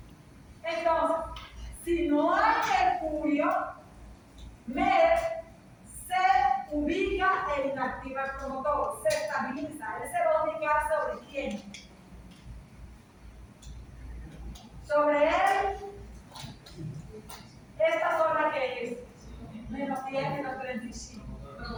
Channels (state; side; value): identical; both; correlation 1.00